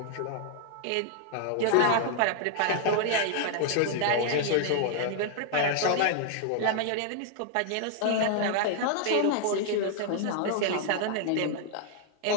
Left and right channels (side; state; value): both; different; correlation 0.00